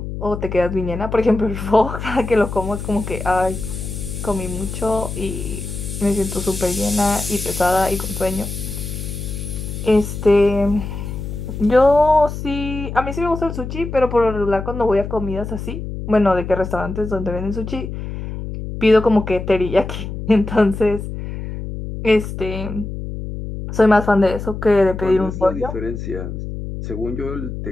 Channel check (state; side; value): noise; left; hum, 7 dB below the sound